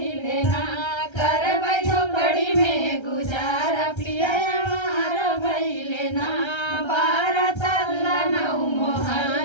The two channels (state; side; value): late; right; 1.3 ms